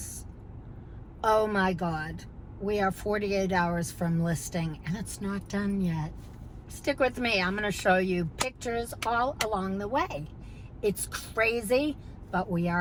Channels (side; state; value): both; identical; correlation 1.00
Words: Oh my God. We are 48 hours from listing and it's not done yet. Stick with me. I'm going to show you pictures all along the way. It's crazy, but we